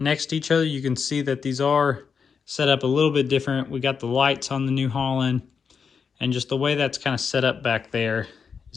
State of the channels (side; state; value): right; quieter; 6.1 dB